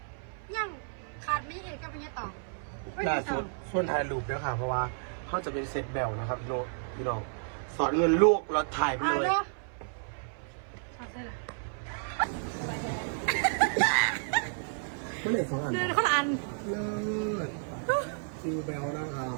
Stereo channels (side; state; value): left; silent; 57 dB below the other